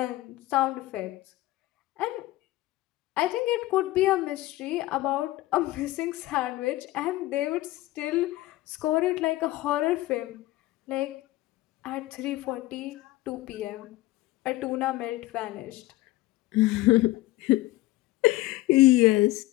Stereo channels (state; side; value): quieter; right; 17.6 dB